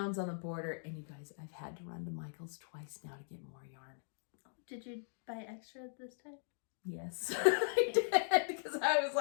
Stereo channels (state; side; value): silent; right; digital silence